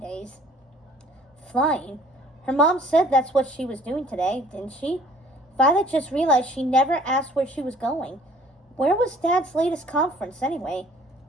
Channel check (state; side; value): normal; both; correlation 0.55